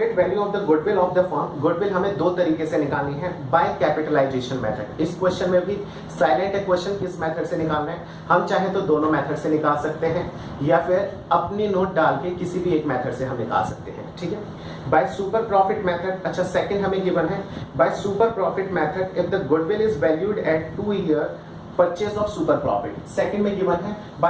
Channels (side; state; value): both; identical; correlation 1.00